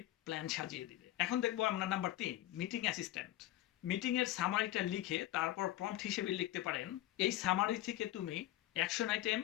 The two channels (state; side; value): quieter; right; 14.7 dB